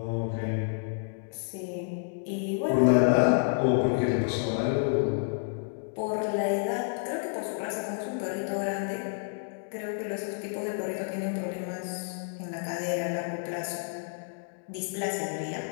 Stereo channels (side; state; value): right; silent; digital silence